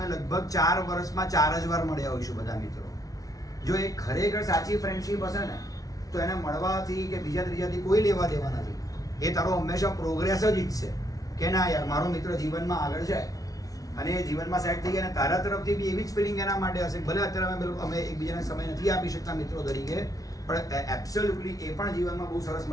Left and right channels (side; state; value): right; late; 0.18 ms